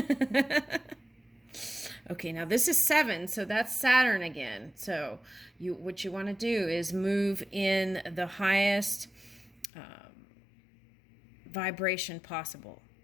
Okay, now this is 7, so that's Saturn again. So what you want to do is move in the highest vibration possible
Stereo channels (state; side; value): drops out; right; at 9.7 s